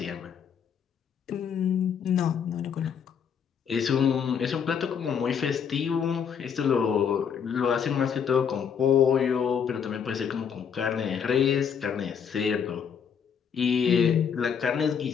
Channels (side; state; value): right; quieter; 7.4 dB